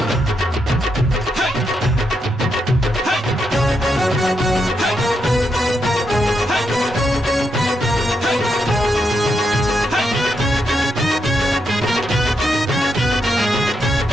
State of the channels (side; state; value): both; normal; correlation 0.81